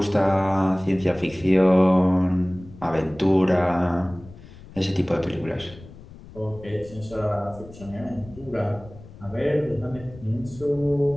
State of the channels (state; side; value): noise; left; rumble, 19 dB below the sound